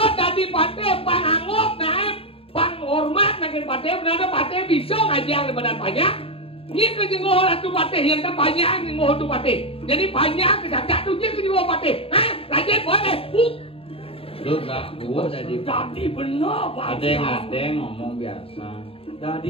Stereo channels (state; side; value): late; right; 0.27 ms